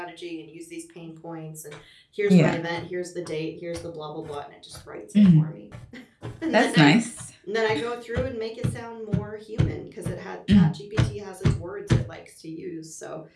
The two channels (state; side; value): identical; both; correlation 1.00